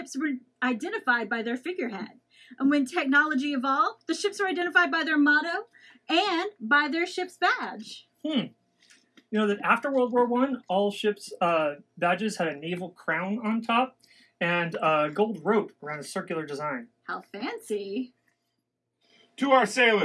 were identified by their figurehead. And when technology evolved, the ships were identified by their motto and by their ship's badge. You know that after World War I, all ships' badges had a naval crown on top and a gold rope around a circular design. How fancy. To our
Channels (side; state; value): both; identical; correlation 1.00